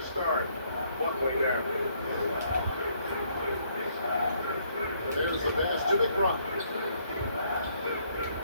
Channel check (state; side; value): inverted; both; correlation -0.68